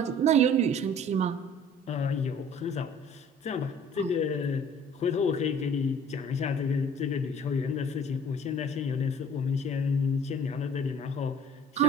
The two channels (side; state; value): both; normal; correlation 0.48